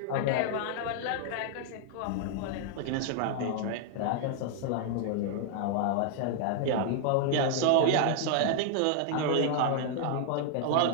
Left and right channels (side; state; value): both; different; correlation 0.00